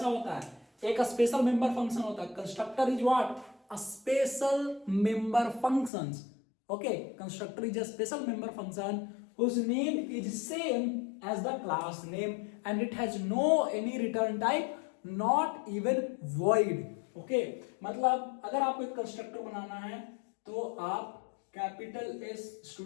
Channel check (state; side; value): drops out; right; at 5.9 s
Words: होता है? एक स्पेशल मेंबर फंक्शन होता है। Constructor is what? A special member functions. Okay, constructor is a special member function whose name is same as the class name and it has no any return type, not even void. Okay, मतलब अगर आपको एक constructor बनाना है तो आप capital S